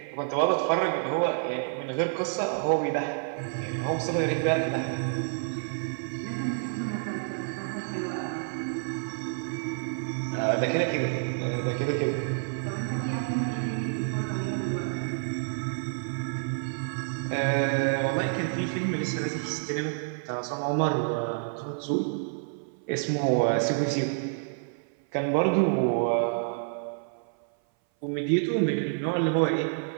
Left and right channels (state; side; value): silent; left; 57 dB below the other